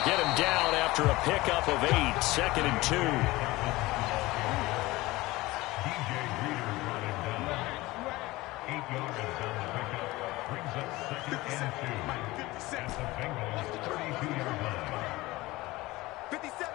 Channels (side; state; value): right; quieter; 19.9 dB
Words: get him down after a pickup of 8, 2nd and 2.